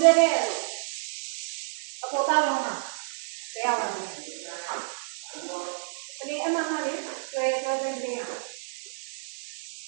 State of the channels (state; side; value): silent; left; 59 dB below the other